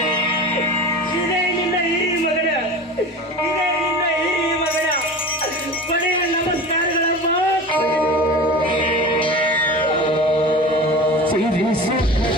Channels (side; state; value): both; normal; correlation 0.33